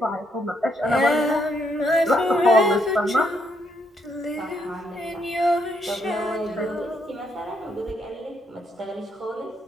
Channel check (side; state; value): both; normal; correlation 0.75